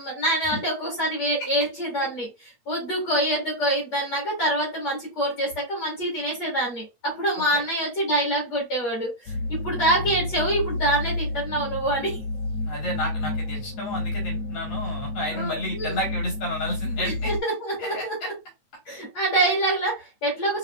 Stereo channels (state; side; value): late; right; 8.6 ms